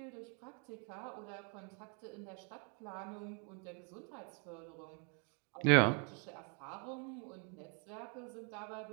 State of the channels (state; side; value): quieter; left; 37.6 dB